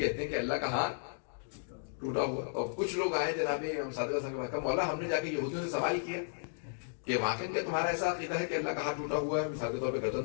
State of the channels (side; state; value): right; silent; digital silence